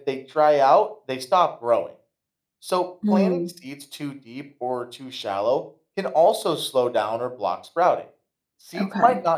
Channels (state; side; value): identical; both; correlation 1.00